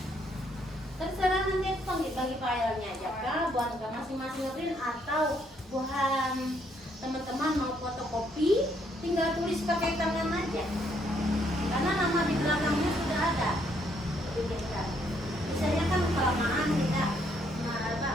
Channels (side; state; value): both; normal; correlation 0.71